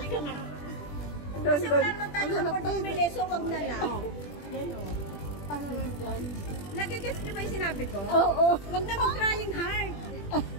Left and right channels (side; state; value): right; late; 20 ms